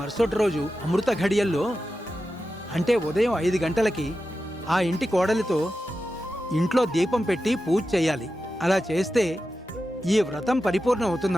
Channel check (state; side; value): normal; both; correlation 0.92